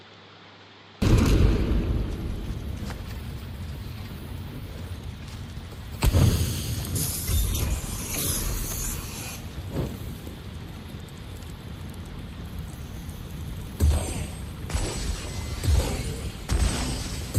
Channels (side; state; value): both; identical; correlation 1.00